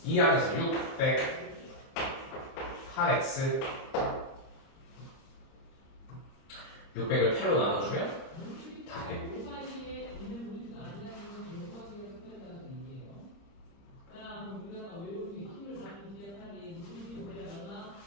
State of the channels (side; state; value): right; late; 30 ms